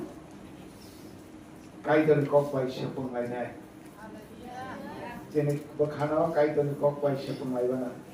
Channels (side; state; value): both; identical; correlation 1.00